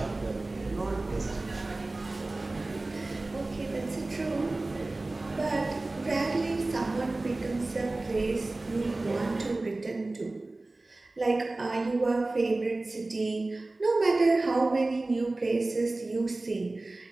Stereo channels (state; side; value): quieter; left; 3.0 dB